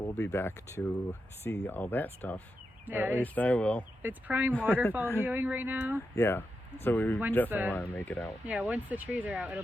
be back to see all that stuff. Yeah, at least I will. It's prime waterfall viewing right now. Yeah. So we definitely want to make it out. Yeah, once the trees are out, it'll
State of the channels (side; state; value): both; normal; correlation 0.87